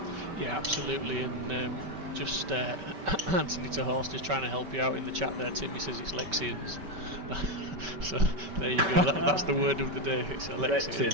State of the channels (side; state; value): left; late; 5.2 ms